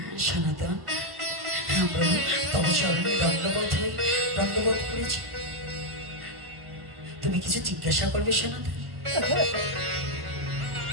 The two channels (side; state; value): left; late; 1.0 ms